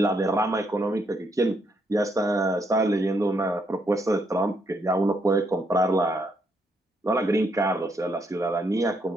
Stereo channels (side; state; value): both; normal; correlation 0.74